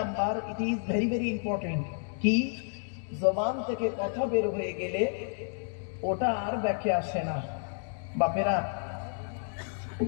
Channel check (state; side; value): silent; right; 57 dB below the other